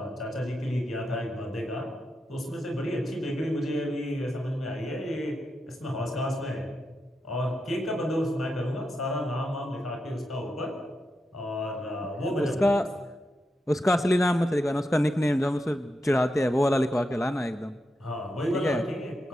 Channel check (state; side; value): normal; both; correlation 0.86